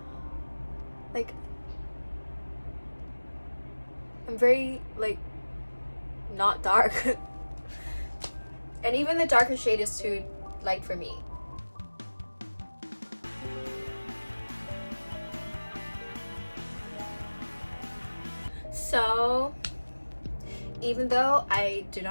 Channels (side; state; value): both; inverted; correlation -1.00